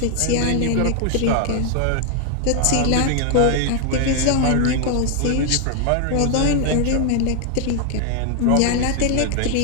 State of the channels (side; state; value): both; different; correlation 0.00